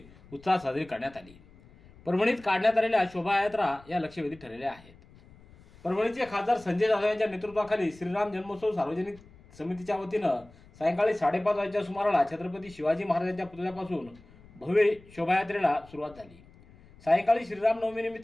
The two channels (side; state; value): left; noise; rumble, 24 dB below the sound